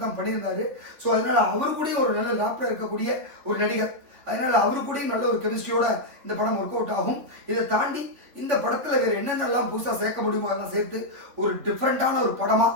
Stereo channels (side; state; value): left; late; 3.6 ms